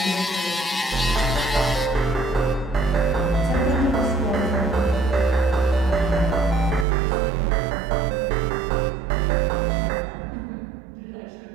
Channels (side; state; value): left; drops out; at 6.9 s